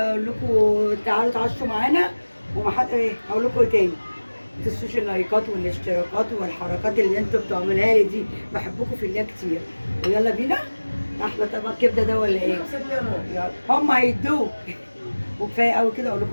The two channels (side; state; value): both; inverted; correlation -1.00